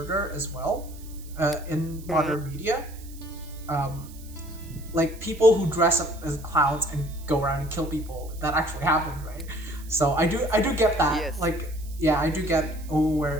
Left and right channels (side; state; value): right; noise; hiss, 21 dB below the sound